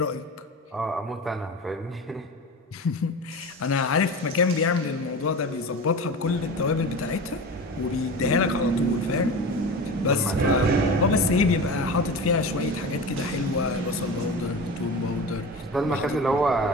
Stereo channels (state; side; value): normal; both; correlation 0.30